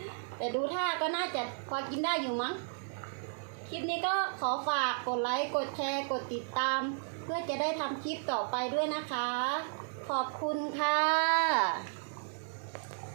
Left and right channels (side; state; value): left; silent; digital silence